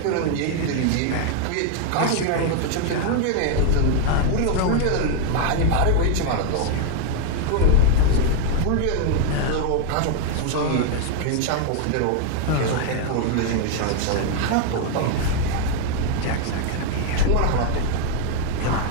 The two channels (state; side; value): different; both; correlation 0.00